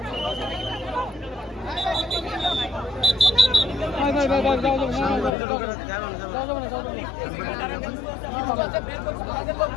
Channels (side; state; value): right; drops out; at 5.4 s